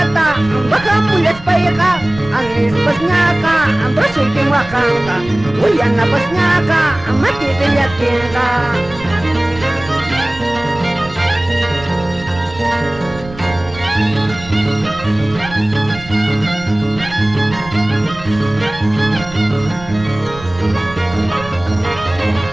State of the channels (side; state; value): right; noise; rumble, 16 dB below the sound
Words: bajamu les paeja, anis pasñaca, ambroso y quenhuacanca, huayana pasñaca, matite ya tienda.